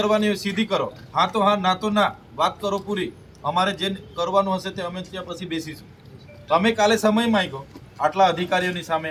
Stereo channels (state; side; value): identical; both; correlation 1.00